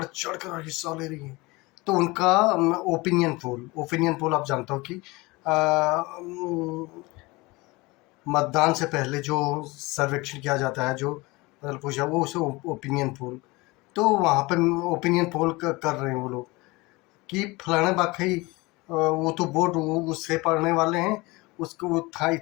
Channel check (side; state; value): right; quieter; 23.1 dB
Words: चढ़ कर हिस्सा ले रही हैं। तो उनका ओपिनियन पोल आप जानते हो कि मतदान से पहले जो सर्वेक्षण किया जाता है, जो मतलब पूछा वो उसे ओपिनियन पोल। तो वहाँ पर ओपिनियन पोल कर रहे हैं वो लोग कि फलाना बाकई वो तो बोर्ड उससे पढ़ने वाले हैं, उसको वो था